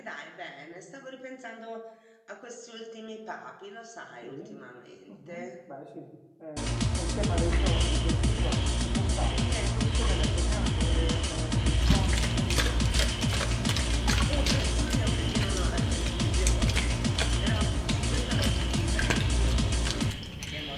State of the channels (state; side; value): identical; both; correlation 1.00